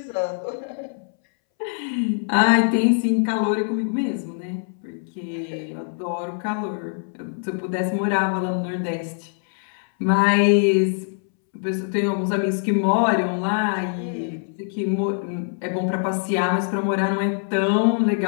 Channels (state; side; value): silent; right; 63 dB below the other